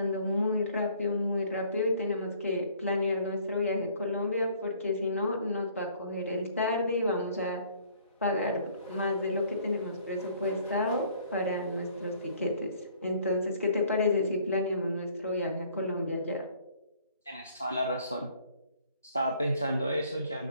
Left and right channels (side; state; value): both; inverted; correlation -0.58